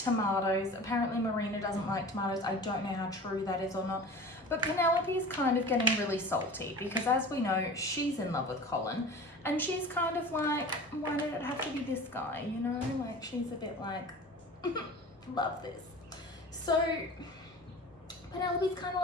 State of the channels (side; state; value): both; normal; correlation 0.37